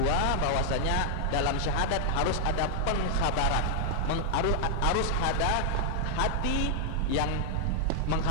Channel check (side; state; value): both; different; correlation 0.00